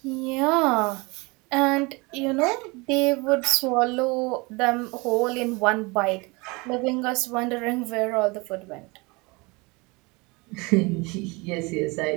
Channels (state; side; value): quieter; left; 26.4 dB